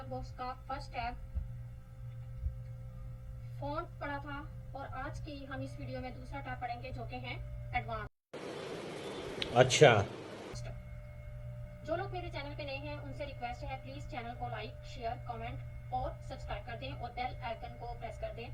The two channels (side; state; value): both; identical; correlation 1.00